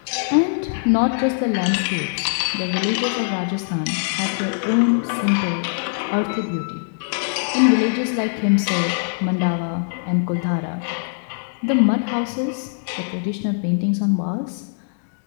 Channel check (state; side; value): silent; right; digital silence